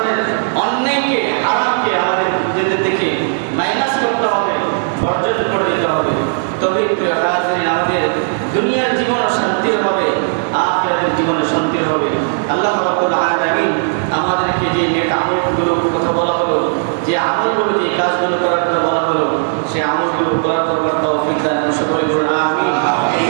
অন্যায়কে, হারামকে আমাদের নিজেদের দেখে মাইনাস করতে হবে, বর্জন করে দিতে হবে। তবেই আমাদের দুনিয়ার জীবনও শান্তির হবে, আখিরাতের জীবনে শান্তির হবে। আল্লাহ রাব্বুল আলামিন আমাদেরকে যে নেক আমলগুলো কথা বলা হলো, যে আমলগুলো, যে কাজগুলো করার কথা বলা হলো, সে আমলগুলো করার তৌফিক দান করুন। সকলে বলুন আমিন।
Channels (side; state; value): left; silent; 65 dB below the other